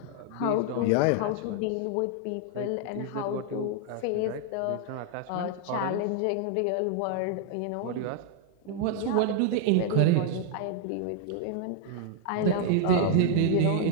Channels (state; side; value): different; both; correlation 0.00